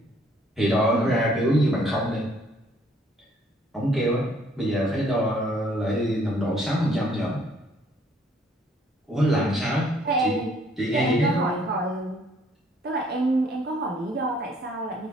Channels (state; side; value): normal; both; correlation 0.63